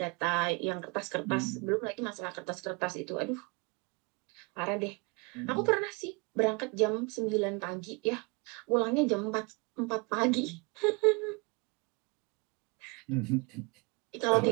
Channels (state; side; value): quieter; left; 30.4 dB